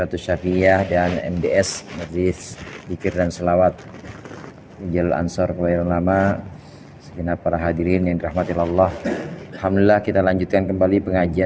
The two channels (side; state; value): both; identical; correlation 1.00